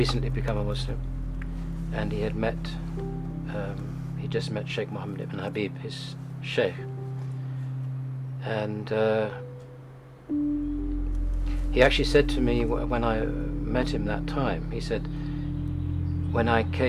become a Muslim, and he just met Sheikh Mohammed ibn Habib, his sheikh, and he actually said to me when I met him that time, he said,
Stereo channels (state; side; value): identical; both; correlation 1.00